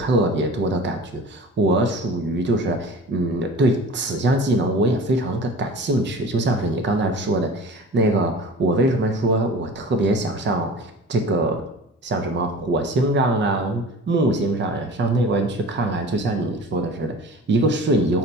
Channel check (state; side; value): normal; both; correlation 0.39